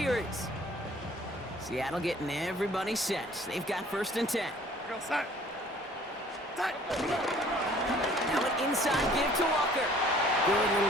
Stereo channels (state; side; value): normal; both; correlation 0.54